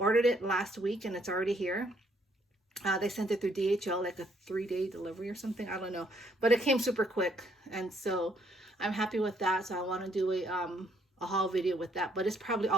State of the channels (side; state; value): both; normal; correlation 0.68